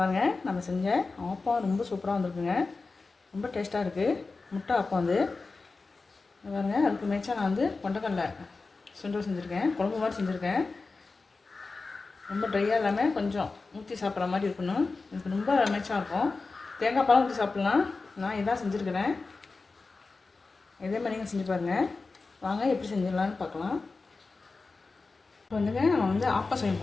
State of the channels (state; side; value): quieter; right; 3.9 dB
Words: நம்ம செஞ்ச ஆப்பம் ரொம்ப சூப்பராக வந்திருக்குங்க. ரொம்ப டேஸ்ட்டாக இருக்குது. முட்டை ஆப்பம் வந்து பாருங்கள். அதுக்கு மேய்ச்சா நான் வந்து கொண்டக்கடலை சுண்டல் செஞ்சுருக்கேன். குழம்பு மாதிரி செஞ்சுருக்கேன். ரொம்ப ட்ரையாக இல்லாமல் கொஞ்சம் ஊற்றி சாப்பிட்ற மாதிரி இருக்கணும். எனக்கு ரொம்ப மேய்ச்சா இருக்கும். தேங்காய் பாலும் ஊற்றி சாப்பிட்லாம். நான் இதான் செஞ்சுருக்கிறேன். இதே மாதிரி நீங்கள் செஞ்சு பாருங்கள். வாங்க எப்படி செஞ்சிடலான்னு பார்க்கலாம். இப்போ வந்துங்க நம்ம வந்து ஆப்பம் செய்ய